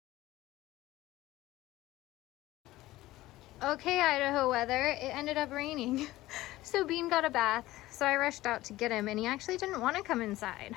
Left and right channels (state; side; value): quieter; right; 17.0 dB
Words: Okay, Idaho weather, it ended up raining. So Bean got a bath, so I rushed out to get him, and he actually didn't want to come inside.